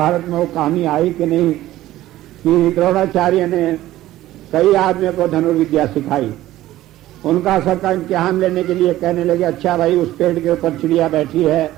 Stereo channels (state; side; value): quieter; left; 15.1 dB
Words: में वो कहानी आई कि नहीं, कि द्रोणाचार्य ने कई आदमियों को धनुर्विद्या सिखाई। उनका सबका इम्तिहान लेने के लिए कहने लगे, अच्छा भाई उस पेड़ के ऊपर चिड़िया बैठी है,